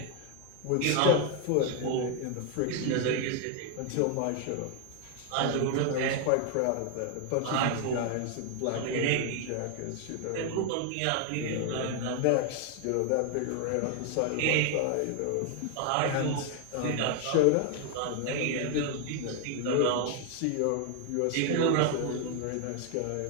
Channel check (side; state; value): both; different; correlation 0.01